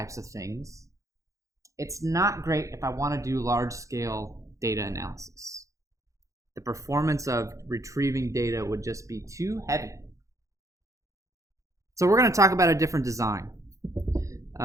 of things. It's not great if I want to do large-scale data analysis. The performance of retrieving data would just be too heavy. So we're going to talk about a different design.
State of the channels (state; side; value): late; left; 0.15 ms